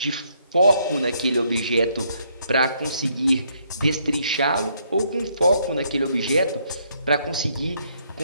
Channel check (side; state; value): both; inverted; correlation -0.71